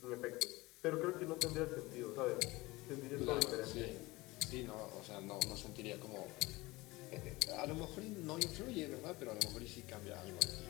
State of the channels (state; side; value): quieter; right; 21.3 dB